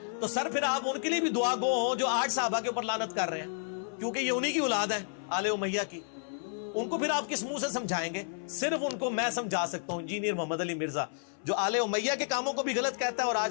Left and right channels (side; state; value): right; silent; 57 dB below the other